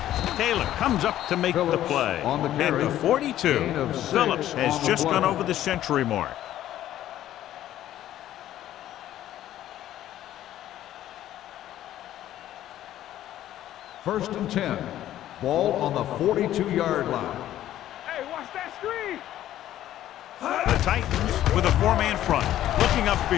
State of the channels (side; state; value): right; quieter; 12.7 dB